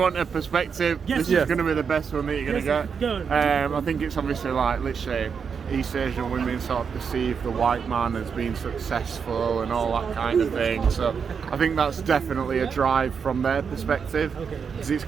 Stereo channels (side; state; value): left; quieter; 6.3 dB